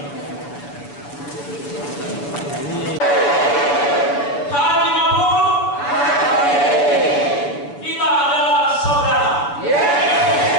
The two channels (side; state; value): right; late; 7.1 ms